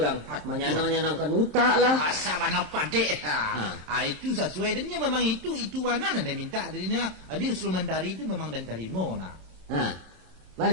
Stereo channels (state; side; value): late; left; 26 ms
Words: Menyanang-nyanangkan utak lah. Asal mana padek. Itu sesuai dennya memang itu warna anda minta darinya. Ada instrumen dari itu memang dan terima